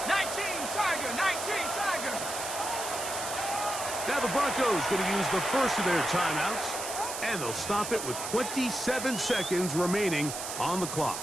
19, Tiger, 19, Tiger. Now the Broncos going to use the first of their timeouts, and they'll stop it with 27 seconds remaining on the clock.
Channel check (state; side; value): noise; right; hiss, 6 dB below the sound